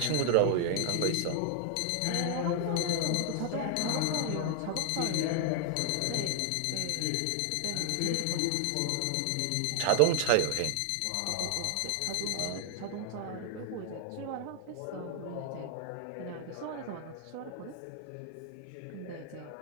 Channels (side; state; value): both; different; correlation 0.00